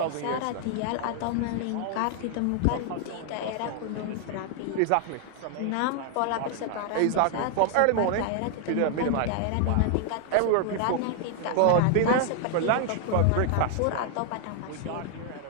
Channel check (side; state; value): both; different; correlation 0.00